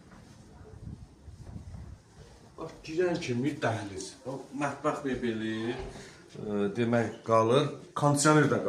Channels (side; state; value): both; identical; correlation 1.00